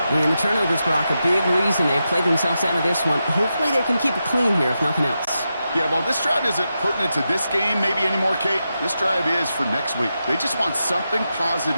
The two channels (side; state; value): both; inverted; correlation -0.88